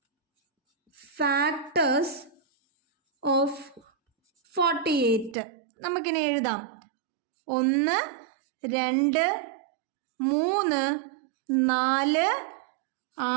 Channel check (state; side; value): drops out; left; at 5.4 s